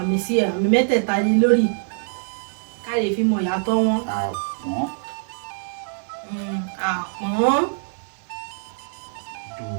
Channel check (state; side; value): silent; left; 59 dB below the other